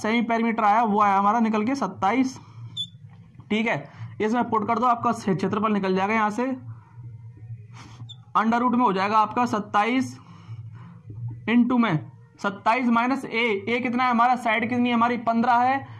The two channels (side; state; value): both; identical; correlation 1.00